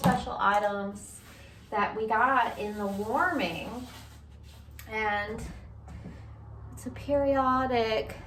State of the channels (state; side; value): identical; both; correlation 1.00